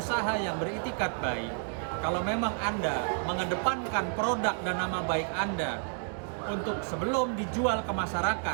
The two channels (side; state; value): left; silent; 57 dB below the other